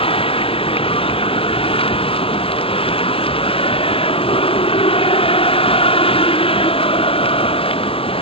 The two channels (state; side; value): late; right; 0.27 ms